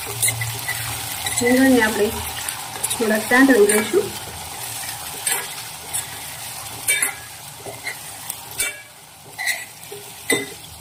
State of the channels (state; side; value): identical; both; correlation 1.00